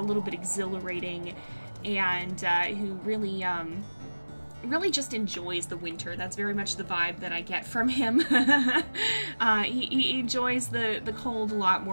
little bit exhilarating, and who really really just enjoys the winter. That's very much the vibe that I get from him. He enjoys the cold a lot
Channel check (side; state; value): both; inverted; correlation -1.00